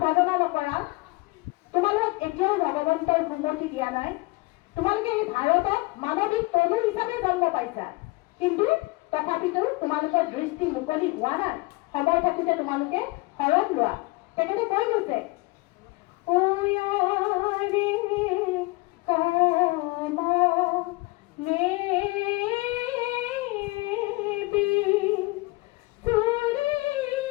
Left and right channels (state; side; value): quieter; right; 23.9 dB